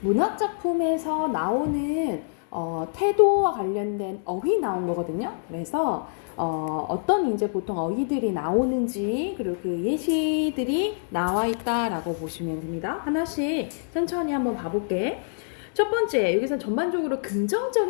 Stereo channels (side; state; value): right; silent; digital silence